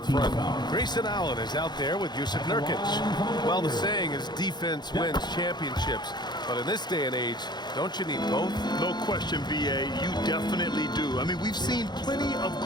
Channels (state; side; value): late; right; 0.21 ms